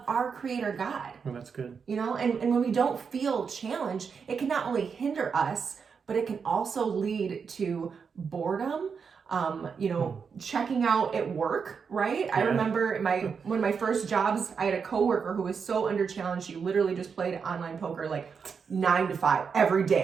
our creator God. Well, that's good. You know, and when we don't feel challenged, it can not only hinder us, but it can also lead to boredom, checking out at work, right? Yeah. I remember one of my first jobs, I had a coworker who was so under challenged, she literally just played online poker like 9 to 5 every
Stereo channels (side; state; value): left; quieter; 6.0 dB